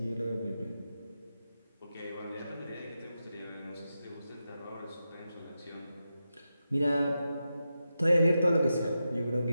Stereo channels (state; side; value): inverted; both; correlation -0.89